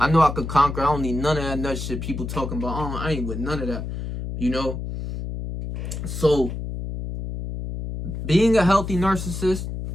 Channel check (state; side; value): noise; left; hum, 6 dB below the sound